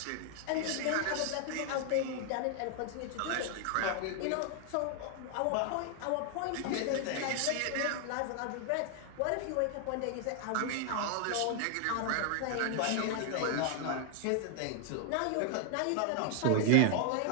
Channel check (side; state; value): both; different; correlation 0.00